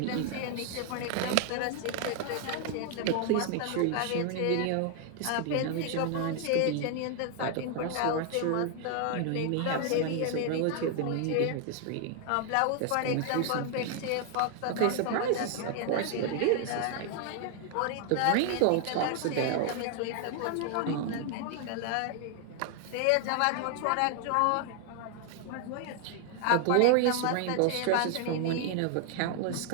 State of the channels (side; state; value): both; different; correlation 0.00